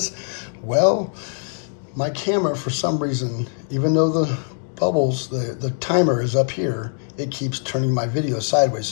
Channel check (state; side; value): silent; right; digital silence